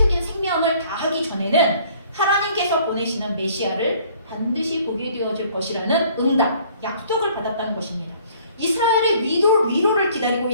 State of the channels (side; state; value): both; inverted; correlation -0.57